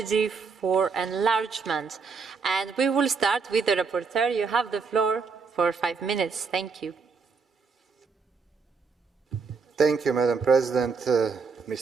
for enlargement. And we will start with the rapporteur. You have the floor for 5 minutes. Thank you. Thank you, Madam President,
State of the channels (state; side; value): quieter; left; 5.1 dB